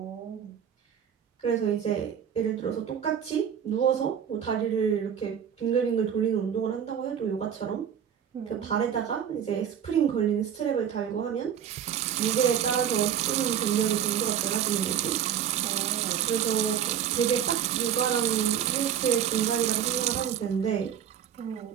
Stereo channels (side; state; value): left; quieter; 9.0 dB